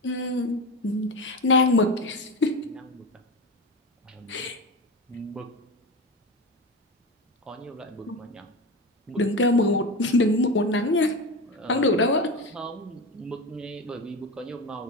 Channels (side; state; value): both; normal; correlation 0.22